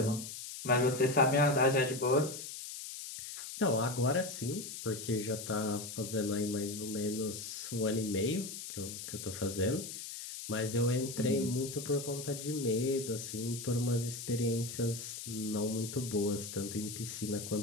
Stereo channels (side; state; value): left; noise; hiss, 9 dB below the sound